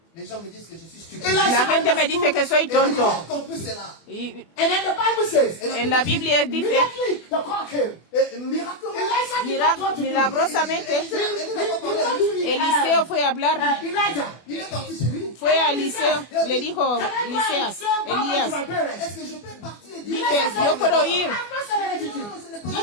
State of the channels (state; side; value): late; right; 24 ms